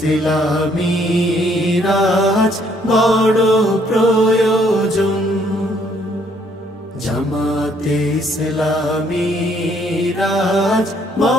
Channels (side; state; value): both; normal; correlation 0.66